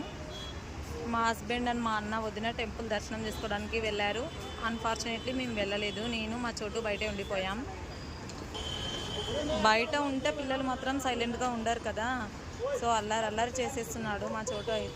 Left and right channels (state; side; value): identical; both; correlation 1.00